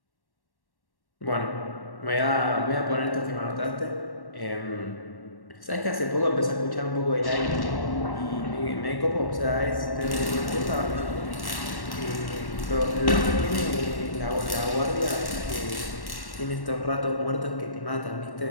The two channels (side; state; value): right; late; 1.1 ms